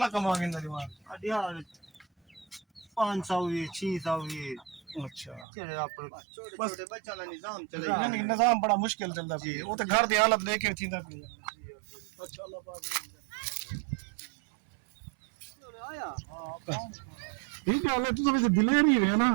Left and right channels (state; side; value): drops out; left; at 5.5 s